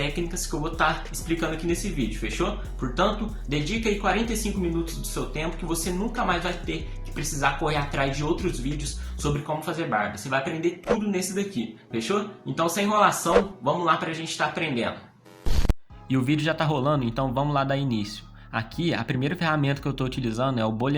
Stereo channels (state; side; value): identical; both; correlation 1.00